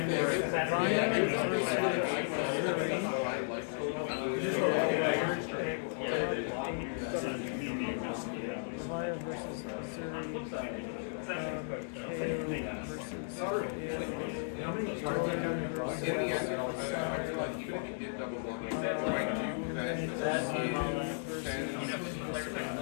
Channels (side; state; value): right; silent; digital silence